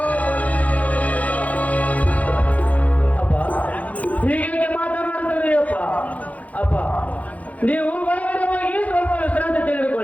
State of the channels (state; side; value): late; right; 0.071 ms